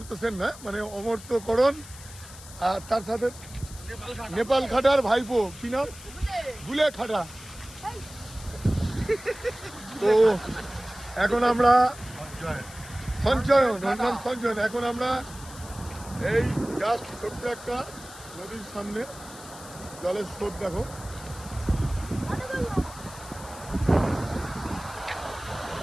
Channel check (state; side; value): noise; left; hiss, 17 dB below the sound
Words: সেন না, মানে অমর্ত্য করণ, আর তার সাথে নেপাল খাটার ভাইপো, কি নাম, গুলে খাটা। তো এখন আমরা সঞ্চয়ন, ওর নাম সঞ্চয়ন। এখন আমরা এই জাস্ট ছোট্ট একটা নদীর সামনে, জলের স্রোত দেখো।